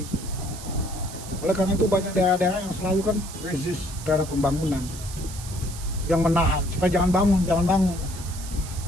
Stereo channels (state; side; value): noise; right; hiss, 13 dB below the sound